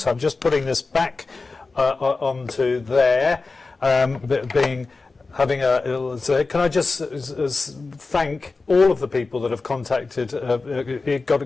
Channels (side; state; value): right; quieter; 3.9 dB